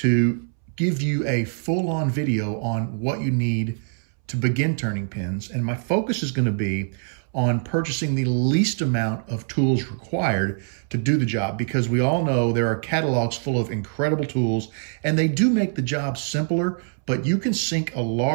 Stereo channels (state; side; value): silent; left; 63 dB below the other